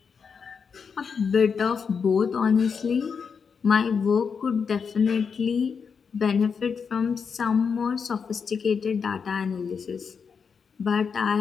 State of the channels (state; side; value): quieter; right; 6.0 dB